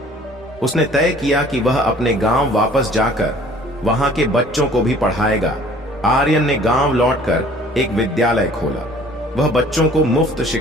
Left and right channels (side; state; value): both; normal; correlation 0.52